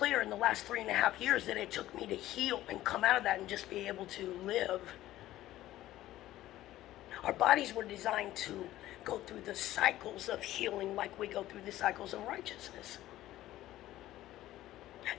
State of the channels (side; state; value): right; quieter; 14.8 dB